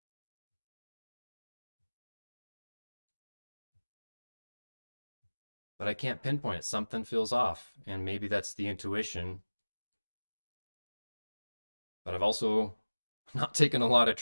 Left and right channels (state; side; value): inverted; both; correlation -1.00